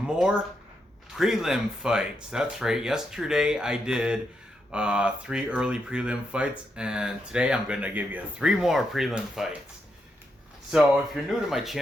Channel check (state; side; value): normal; both; correlation 0.82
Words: prelim fights. That's right. Yesterday I did 3 early prelim fights, and today I'm going to give you 3 more prelim fights. So if you're new to my